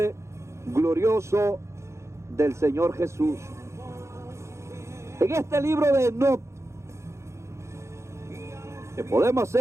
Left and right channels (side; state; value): left; late; 0.14 ms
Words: glorioso del Señor Jesús. En este libro de Enoc, que podemos